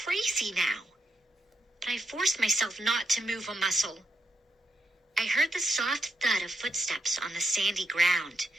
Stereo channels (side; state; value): both; normal; correlation 0.81